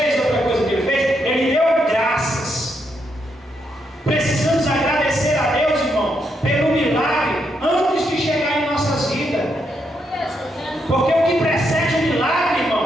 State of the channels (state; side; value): normal; both; correlation 0.79